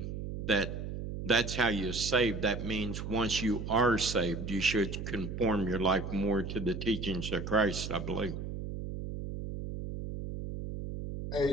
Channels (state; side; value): noise; right; hum, 6 dB below the sound